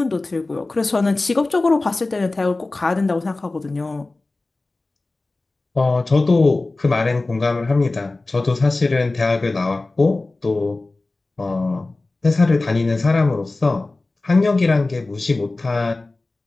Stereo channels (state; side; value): quieter; right; 3.2 dB